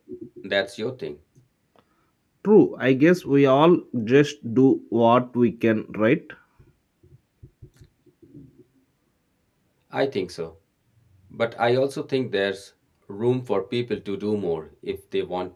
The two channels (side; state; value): both; identical; correlation 1.00